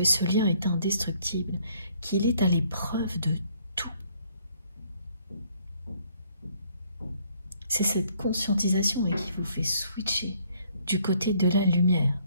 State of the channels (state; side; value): inverted; both; correlation -0.65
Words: ce lien est indestructible, qu'il est à l'épreuve de tout. C'est cette conscientisation qui vous fait switcher du côté de la lumière,